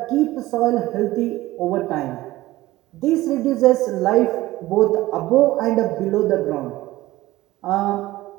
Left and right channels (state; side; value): quieter; left; 17.3 dB